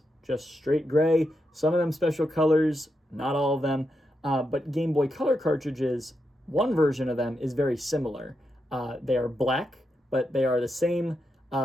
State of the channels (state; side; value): normal; both; correlation 0.85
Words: just straight gray, some of them special colors, not all of them. But Game Boy Color cartridges, one version of them is very similar. They are black, but they are the same